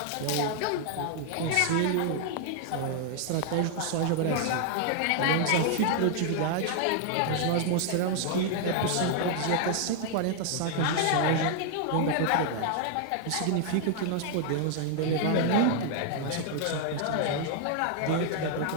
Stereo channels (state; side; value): different; both; correlation 0.00